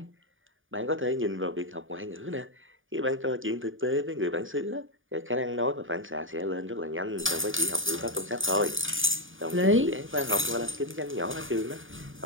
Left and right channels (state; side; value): late; left; 0.58 ms